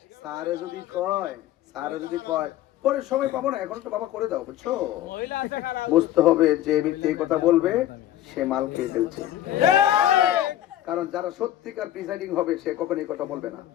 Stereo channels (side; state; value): right; quieter; 12.8 dB